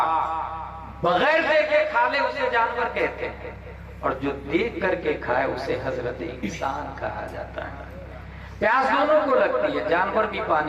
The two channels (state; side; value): identical; both; correlation 1.00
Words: بغیر دیکھے کھا لے اسے جانور کہتے ہیں، اور جو دیکھ کر کے کھائے اسے حضرت انسان کہا جاتا ہے۔ پیاس دونوں کو لگتی ہے، جانور بھی